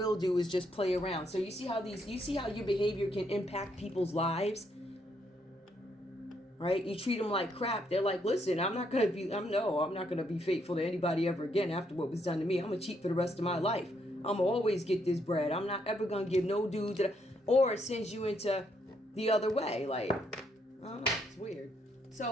do is just play around. So you see how your behavior can impact people's lives? Right? You treat them like crap. They're like, listen, I'm not going to be faithful to anybody ever again after what was done to me. I'm going to cheat for the rest of my life. I'm going to always get this bread. I'm not ever going to give no dude or it sends you into the other way. Like, I don't know. It's weird.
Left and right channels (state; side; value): normal; both; correlation 0.74